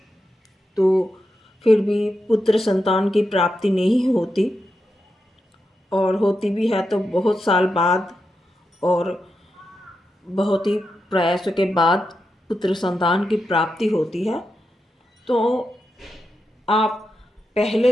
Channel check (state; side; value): normal; both; correlation 0.87